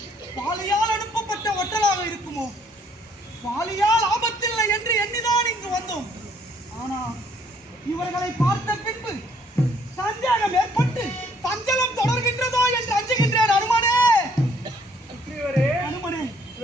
பாலியால் அனுப்பப்பட்ட ஒட்டலாக இருக்குமோ? பாலியால் ஆபத்தில்லை என்று எண்ணிதான் இங்கு வந்தோம். ஆனால் இவர்களை பார்த்த பின்பு சந்தேகம் ஏற்பட்டு சஞ்சலம் தொடர்கின்றதோ என்று அஞ்சுகின்றேன். அனுமனே அனுமனே,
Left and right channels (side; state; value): both; normal; correlation 0.64